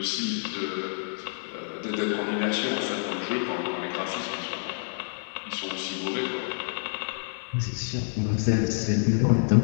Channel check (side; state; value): right; silent; 57 dB below the other